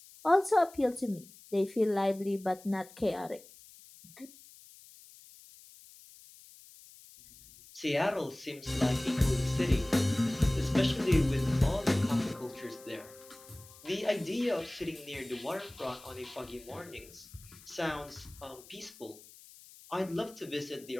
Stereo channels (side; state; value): left; noise; hiss, 21 dB below the sound